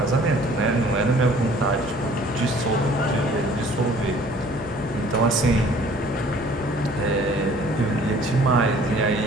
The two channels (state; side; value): noise; left; hum, 15 dB below the sound